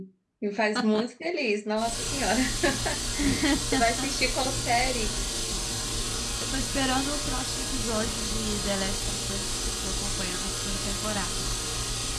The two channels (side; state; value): both; identical; correlation 1.00